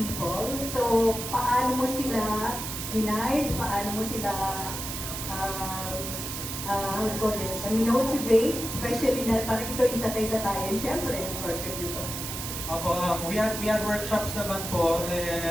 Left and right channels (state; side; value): noise; right; hiss, 6 dB below the sound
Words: So, paano mo sila hinide? Paano mo sila how do you call this? Motivate? Especially na parang ikaw yung tatay-tatayan, syempre, yung project nito. Opo, we had workshops naman po,